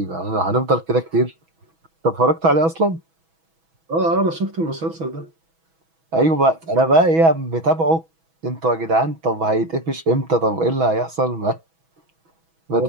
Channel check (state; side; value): late; left; 6.1 ms